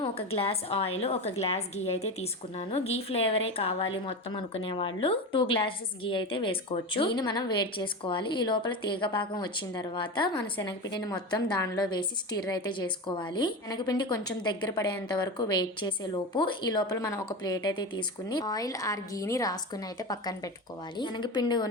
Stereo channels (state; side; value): normal; both; correlation 0.23